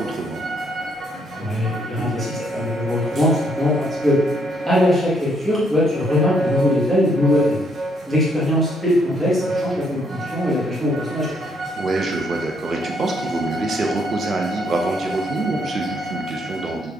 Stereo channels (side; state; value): both; normal; correlation 0.71